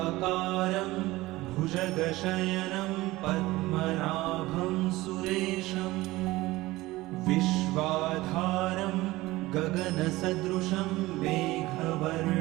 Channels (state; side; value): quieter; left; 18.9 dB